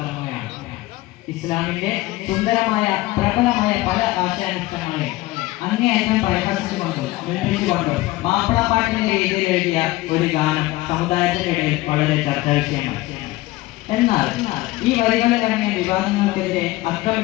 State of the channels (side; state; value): right; quieter; 18.8 dB